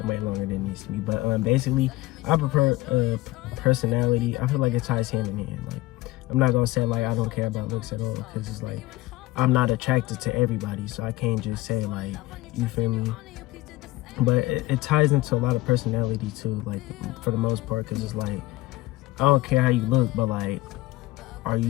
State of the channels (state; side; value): quieter; right; 18.5 dB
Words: way longer than it needs to be. But basically, I prefer personality. I feel like it ties hand in hand. Like, I'm not gonna say like I don't care about looks at all, because it's like I'm not attracted to everybody, so I can't just say like, you feel me. But it ties into a lot of personality too, like for the most part, because it's like I don't care how you look, but like, or